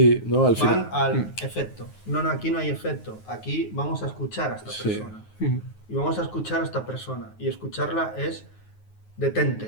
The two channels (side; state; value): right; late; 9.4 ms